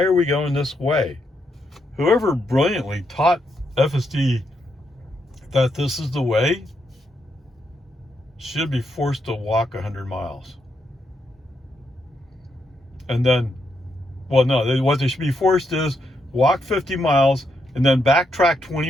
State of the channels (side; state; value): both; normal; correlation 0.80